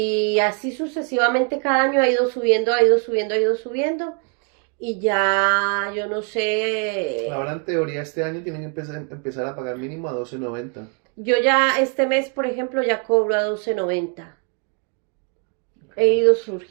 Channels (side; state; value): left; quieter; 37.3 dB